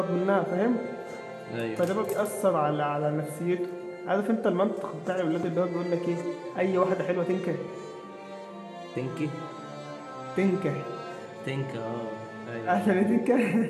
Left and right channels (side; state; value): both; identical; correlation 1.00